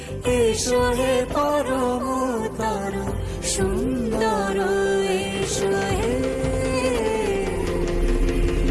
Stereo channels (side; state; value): both; identical; correlation 1.00